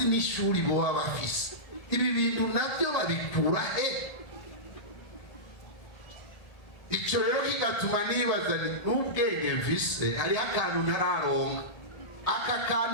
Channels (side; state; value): right; late; 1.8 ms